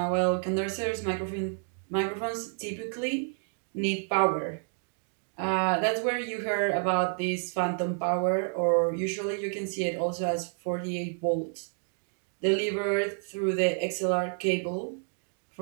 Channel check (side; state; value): left; silent; 58 dB below the other